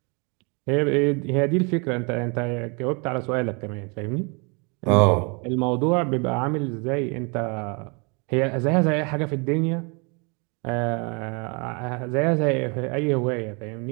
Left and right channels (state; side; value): quieter; left; 32.5 dB